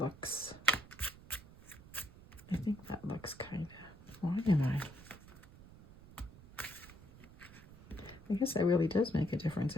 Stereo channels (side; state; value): right; noise; rumble, 19 dB below the sound